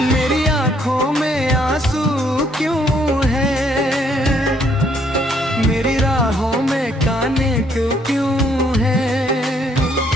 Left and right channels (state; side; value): normal; both; correlation 0.68